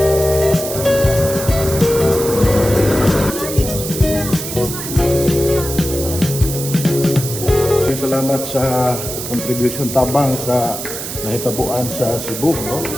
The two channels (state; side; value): noise; right; hiss, 7 dB below the sound